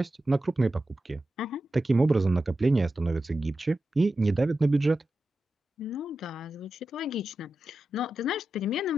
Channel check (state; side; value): normal; both; correlation 0.91